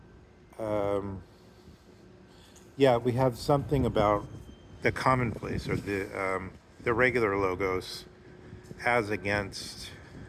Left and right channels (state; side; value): identical; both; correlation 1.00